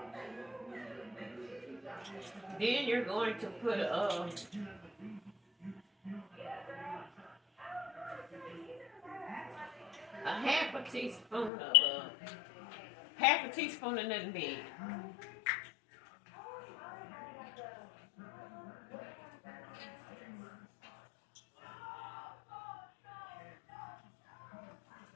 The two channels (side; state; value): right; drops out; at 11.5 s